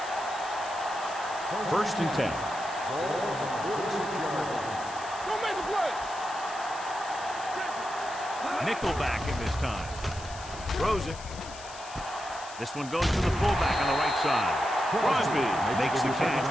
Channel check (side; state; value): left; noise; hiss, 15 dB below the sound